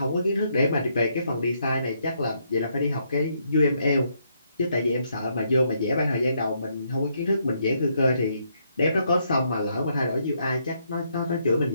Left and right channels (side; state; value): both; inverted; correlation -0.75